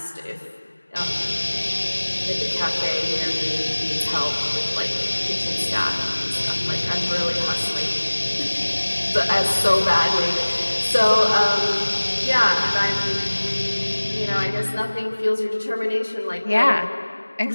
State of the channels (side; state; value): both; inverted; correlation -1.00